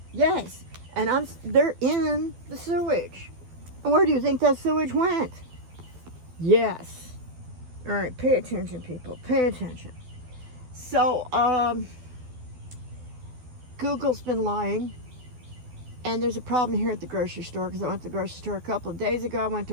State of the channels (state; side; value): late; left; 12 ms